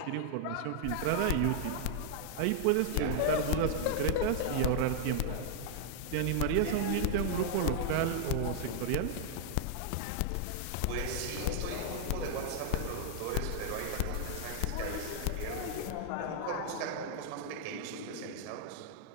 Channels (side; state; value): both; different; correlation 0.00